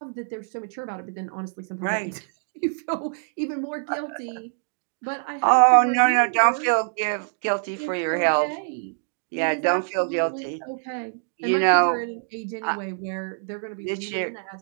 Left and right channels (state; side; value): silent; left; digital silence